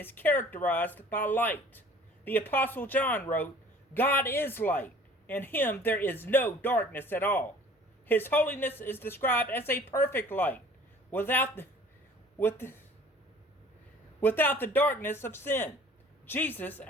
characterized by light. The Apostle John wrote, "God is light. In him there is no darkness at all." His holiness is described as a perfect light, without the darkness of sin. Jesus,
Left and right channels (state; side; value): normal; both; correlation 0.50